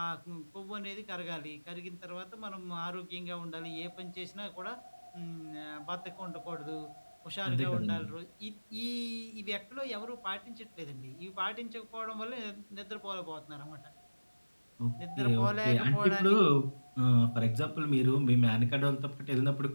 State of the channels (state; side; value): inverted; both; correlation -1.00